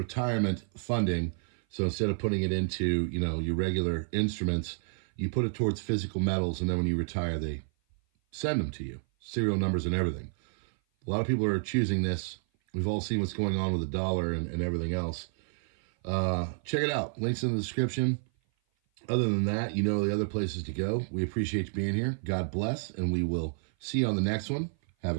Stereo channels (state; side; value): silent; left; 56 dB below the other